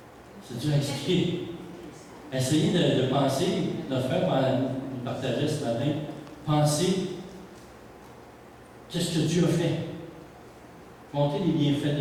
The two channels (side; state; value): both; identical; correlation 1.00